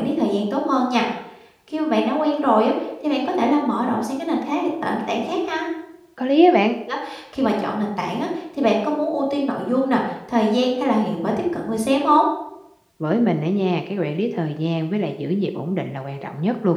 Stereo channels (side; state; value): both; identical; correlation 1.00